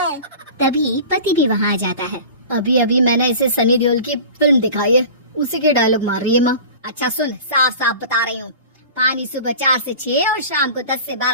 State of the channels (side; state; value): both; inverted; correlation -0.37